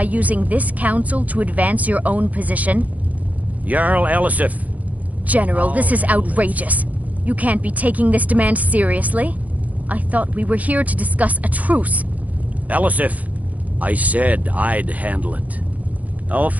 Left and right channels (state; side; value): late; left; 0.075 ms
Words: using this council to advance your own position? Jarl Elisif. General, this is outrageous. You can't be taking this demand seriously. I thought we were here to discuss a truce. Elisif, I said I'd handle it.